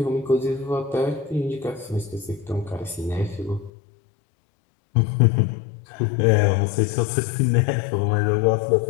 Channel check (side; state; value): right; drops out; at 3.7 s